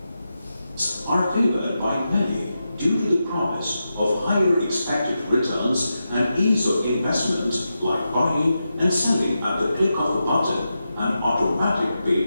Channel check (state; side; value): inverted; both; correlation -0.89